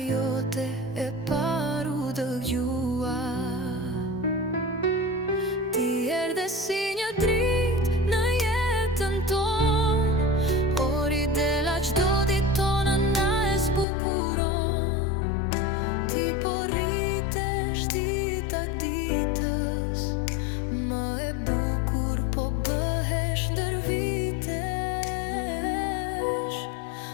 e paru dëgjua. Ti erdhe si një dritë në jetën tonë, ori dela qdo ditë tona na e zbukuron. Ti po rritesh dita ditës, më e bukur po bëhesh ndër vitesh.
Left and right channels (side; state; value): right; drops out; at 13.9 s